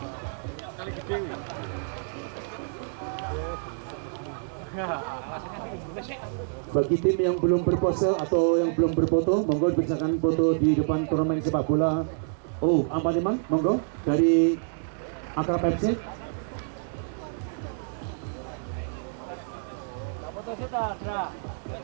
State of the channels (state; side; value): silent; left; digital silence